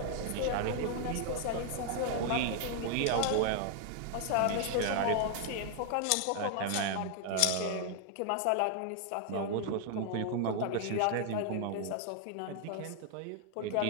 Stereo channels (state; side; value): different; both; correlation 0.00